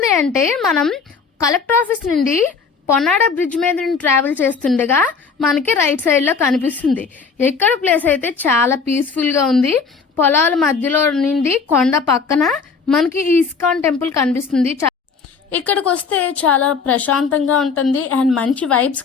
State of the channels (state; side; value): quieter; right; 5.3 dB